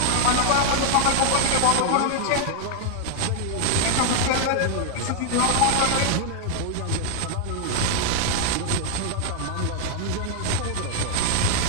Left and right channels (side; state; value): both; different; correlation 0.00